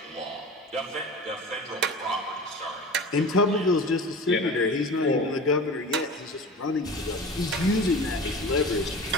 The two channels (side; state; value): both; normal; correlation 0.35